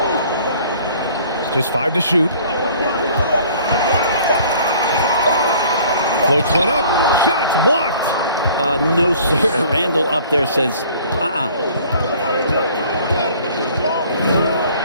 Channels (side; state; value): both; inverted; correlation -0.52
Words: Just 5 to shoot. Floats one up. Shots blocked. No, sir. Randall up there says,